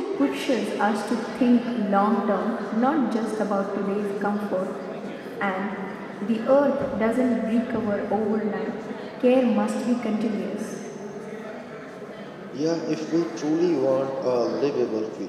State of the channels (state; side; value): identical; both; correlation 1.00